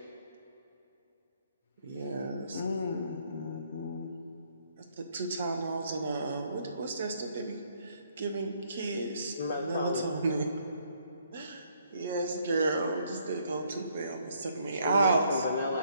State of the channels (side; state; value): both; inverted; correlation -0.68